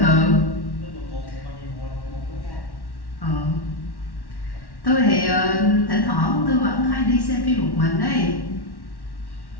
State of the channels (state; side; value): late; right; 1.1 ms